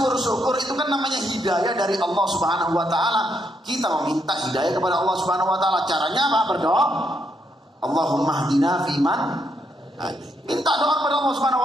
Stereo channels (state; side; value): normal; both; correlation 0.77